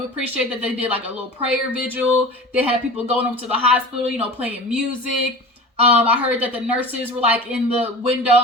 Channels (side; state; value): both; normal; correlation 0.35